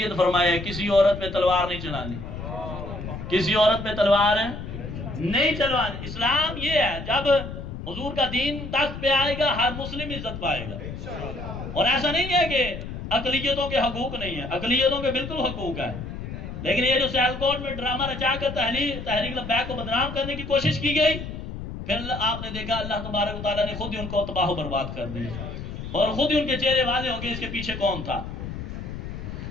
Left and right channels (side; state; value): left; noise; rumble, 8 dB below the sound